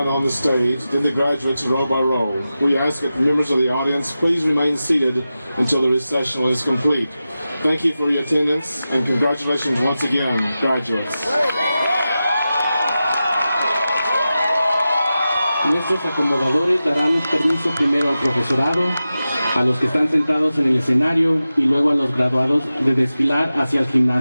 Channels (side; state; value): both; inverted; correlation -0.93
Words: on the stage, then the graduates row by row. We ask that members of the audience please remain seated until the recessional is complete. Thank you for your attendance, and congratulations once again, graduates. Nuestros acomodadores darán permiso primero al profesorado, a los que están sentados en el escenario y luego a los graduados de desfilar hacia el